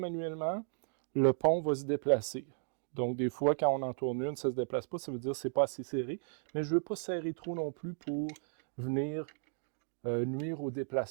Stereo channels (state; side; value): silent; left; digital silence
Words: le pont va se déplacer. Donc des fois, quand on en tourne une, ça ne se déplace pas, ça veut dire que ce n'est pas assez serré. Mais je ne veux pas serrer trop non plus pour venir nuire au